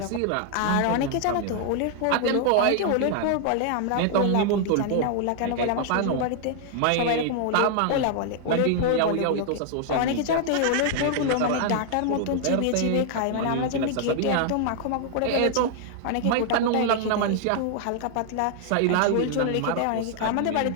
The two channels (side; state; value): both; different; correlation 0.00